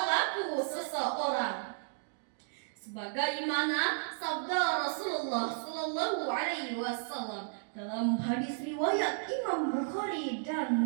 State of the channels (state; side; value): silent; left; digital silence